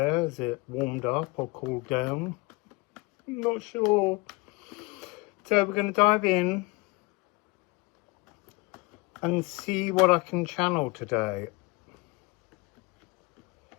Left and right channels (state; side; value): quieter; right; 25.6 dB